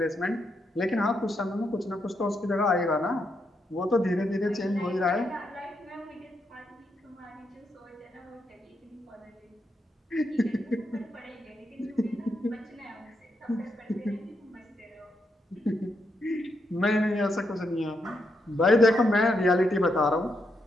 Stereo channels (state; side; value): normal; both; correlation 0.81